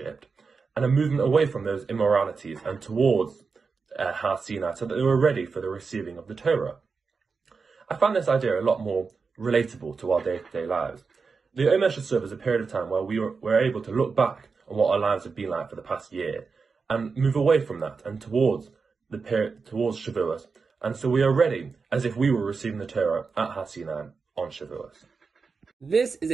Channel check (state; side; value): quieter; left; 4.9 dB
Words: and a movement away from those immoralities and towards Har Sinai, so that they were ready for the receiving of the Torah. I find this idea a lot more relatable to our day-to-day lives. The HaOmer should serve as a period of time where we're able to look back on what our lives have been like for the past year and move away from that and towards Shavuos. And so we are ready as if we were receiving the Torah at Har Sinai on Shavuos. This is